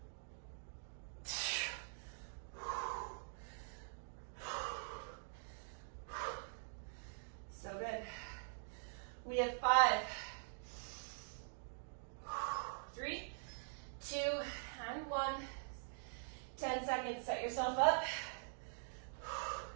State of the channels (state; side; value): silent; left; digital silence